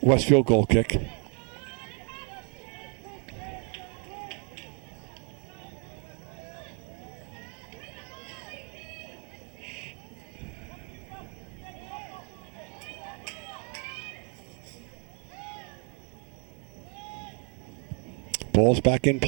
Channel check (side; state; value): left; quieter; 37.9 dB